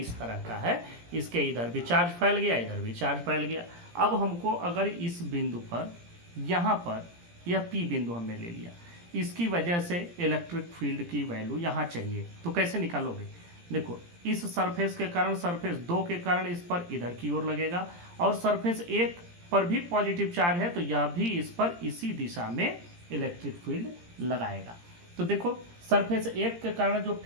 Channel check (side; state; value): left; late; 17 ms